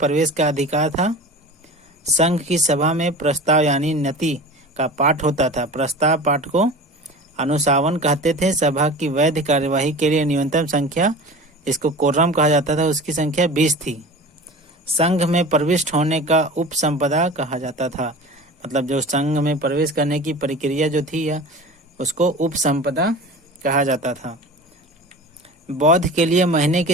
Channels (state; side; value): normal; both; correlation 0.36